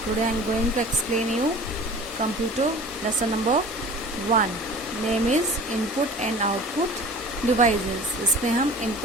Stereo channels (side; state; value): both; normal; correlation 0.42